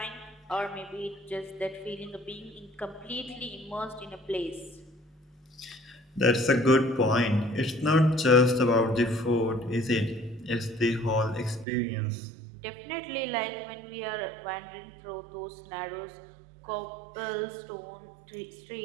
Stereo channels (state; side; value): drops out; left; at 11.7 s